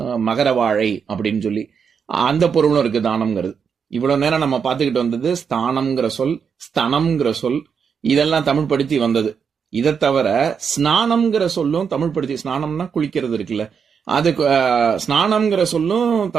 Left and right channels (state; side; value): quieter; left; 6.6 dB